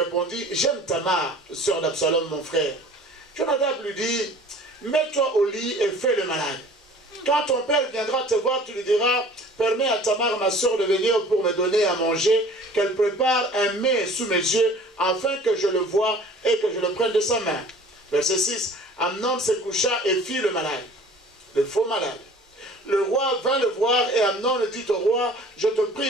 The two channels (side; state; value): both; normal; correlation 0.48